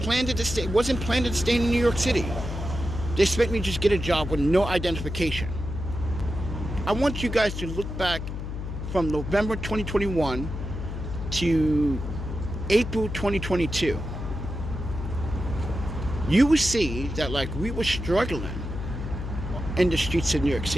to stay, wasn't planned to stay in New York City. They expect me to just get a job with no identification. I want you guys to look back from November 2021 to April 2022. You will see that like we were struggling in the streets of New York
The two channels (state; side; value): noise; left; hum, 6 dB below the sound